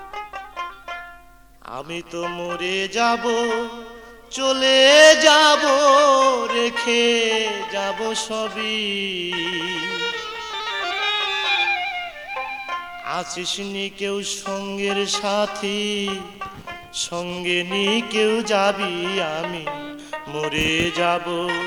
আমি তো মরে যাব, চলে যাব, রেখে যাব সবই। আছিস নি কেউ সঙ্গের সাথী, সঙ্গে নি কেউ যাবি, আমি মরে যাব,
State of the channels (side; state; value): both; identical; correlation 1.00